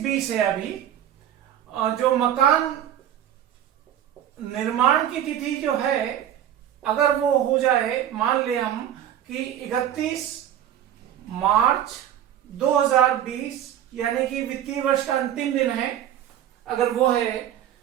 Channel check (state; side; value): quieter; left; 10.8 dB